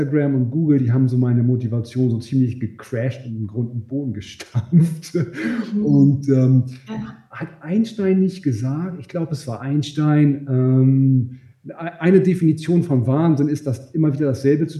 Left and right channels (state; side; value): identical; both; correlation 1.00